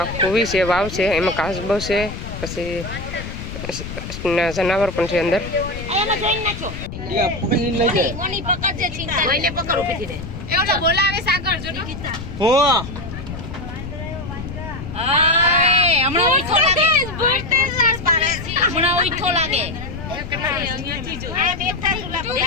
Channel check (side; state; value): left; noise; rumble, 9 dB below the sound